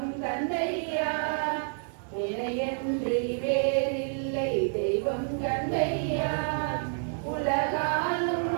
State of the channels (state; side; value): silent; left; 59 dB below the other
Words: தந்தையா. இணையன்றி வேறில்லை தெய்வம் தந்தையா. உலகாலும்